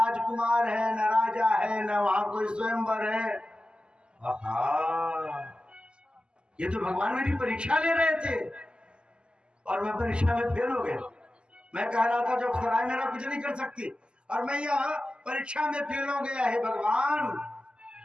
है, न राजा है, न वहां कोई स्वयंवर है। आहा, ये तो भगवान मेरी परीक्षा ले रहे थे और मैं परीक्षा में फेल हो गया। मैं कह रहा था जब सराय मेरा कुछ नहीं कर सकती और मैं यह परीक्षा में फेल हो गया है। भगवान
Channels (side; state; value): left; late; 0.050 ms